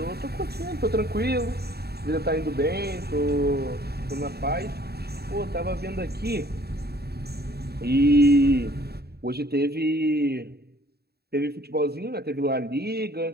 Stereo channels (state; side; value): late; left; 0.47 ms